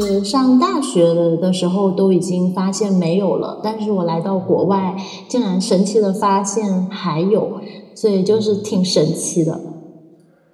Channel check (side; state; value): both; identical; correlation 1.00